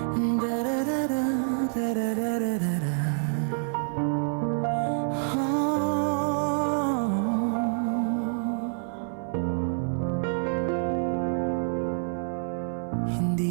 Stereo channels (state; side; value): silent; left; 58 dB below the other